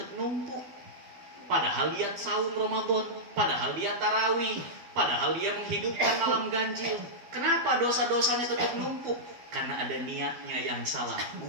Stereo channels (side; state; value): left; late; 12 ms